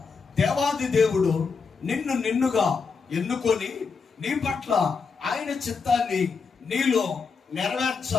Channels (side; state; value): right; quieter; 5.1 dB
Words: దేవాది దేవుడు నిన్నుగా ఎన్నుకొని నీ పట్ల ఆయన చిత్తాన్ని నీలో